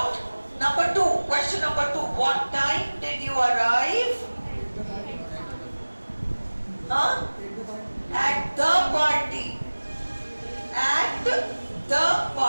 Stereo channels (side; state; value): both; inverted; correlation -1.00